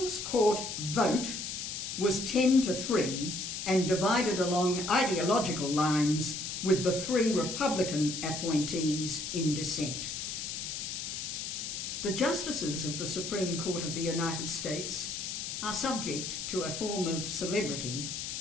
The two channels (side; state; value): left; noise; hiss, 5 dB below the sound